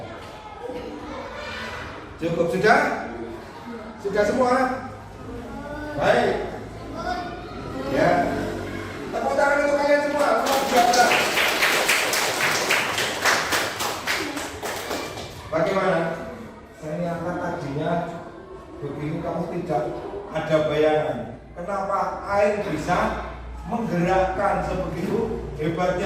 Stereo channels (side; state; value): both; identical; correlation 1.00